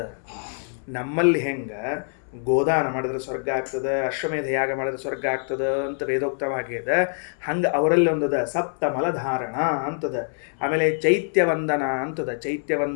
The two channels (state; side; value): silent; right; 62 dB below the other